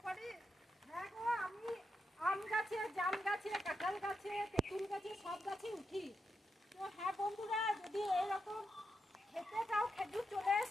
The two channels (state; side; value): normal; both; correlation 0.85